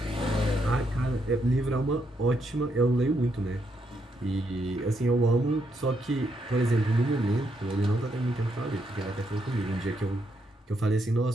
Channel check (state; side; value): normal; both; correlation 0.78